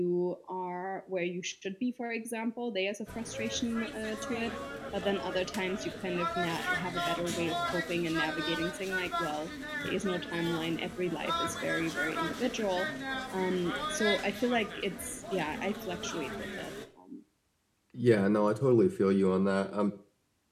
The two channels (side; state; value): both; identical; correlation 1.00